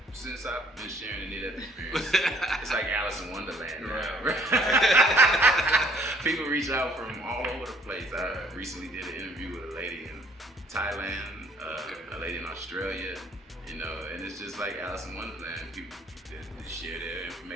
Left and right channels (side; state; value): both; normal; correlation 0.60